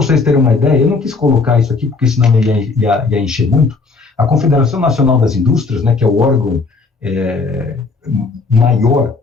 terem uma ideia, eu não quis colocar isso aqui, porque senão ia encher muito. A Confederação Nacional das Indústrias, né, que é o órgão maior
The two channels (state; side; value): quieter; right; 4.1 dB